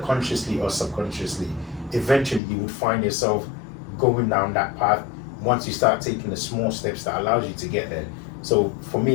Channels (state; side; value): drops out; right; at 2.4 s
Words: consciously or subconsciously. Eventually you would find yourself going down that path once you start taking the small steps that allows you to get there. So for